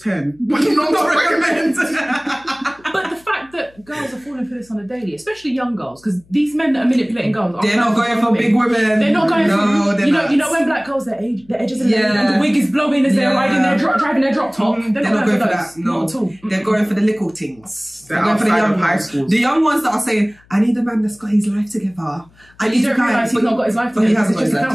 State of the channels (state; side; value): noise; left; hum, 30 dB below the sound